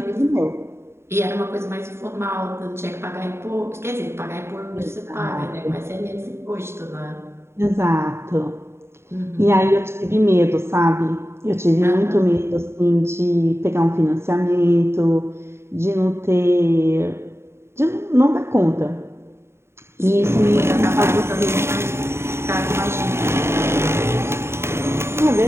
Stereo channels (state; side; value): late; left; 0.12 ms